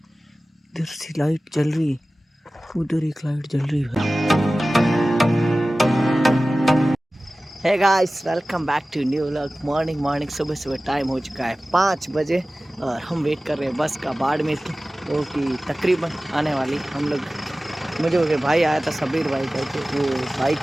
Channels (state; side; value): normal; both; correlation 0.97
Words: इधर से लाइट जल रही, उधर एक लाइट जल रही है। Hey guys, welcome back to new vlog. Morning सुबह टाइम हो चुका है 5 बजे और हम वेट कर रहे हैं बस का बाड़मेर की, वो कि तकरीबन आने वाली। हम लोग, मुझे वो भाई आया था सबीर भाई करके, वो